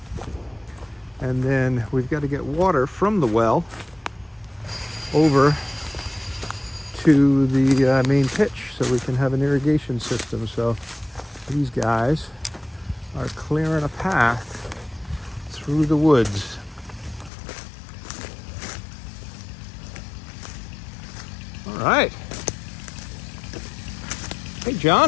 then we've got to get water from the well over to the main pitch so we can have an irrigation system. So these guys are clearing a path through the woods. All right. Hey,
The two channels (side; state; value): right; drops out; at 17.3 s